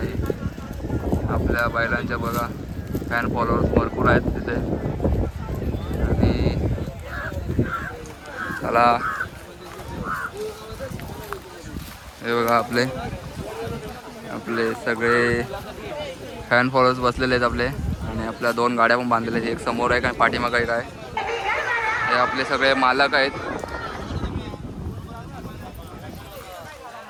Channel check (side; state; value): both; identical; correlation 1.00